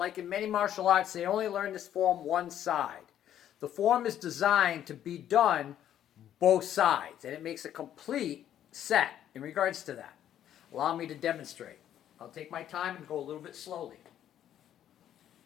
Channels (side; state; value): right; quieter; 10.8 dB